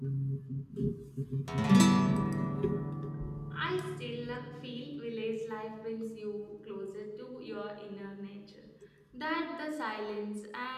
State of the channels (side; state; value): both; identical; correlation 1.00